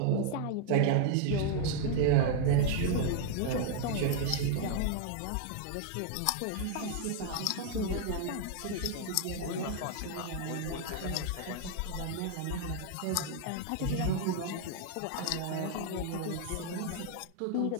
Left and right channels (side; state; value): both; different; correlation 0.00